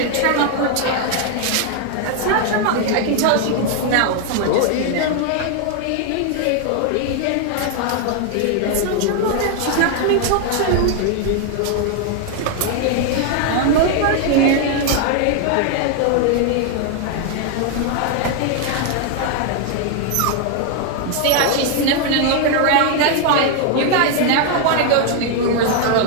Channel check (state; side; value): different; both; correlation 0.00